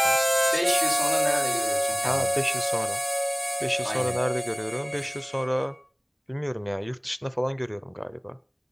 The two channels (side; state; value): both; identical; correlation 1.00